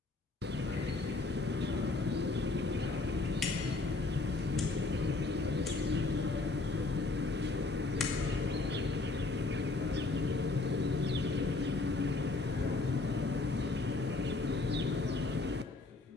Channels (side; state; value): right; quieter; 3.4 dB